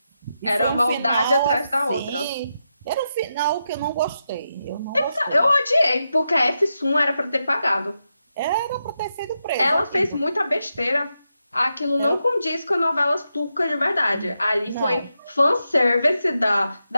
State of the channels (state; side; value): inverted; both; correlation -0.86